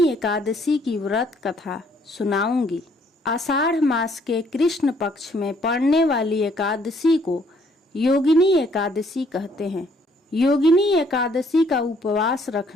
एकादशी की व्रत कथा सुनाऊंगी। आषाढ़ मास के कृष्ण पक्ष में पड़ने वाली एकादशी को योगिनी एकादशी कहते हैं। योगिनी एकादशी का उपवास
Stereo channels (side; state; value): both; normal; correlation 0.65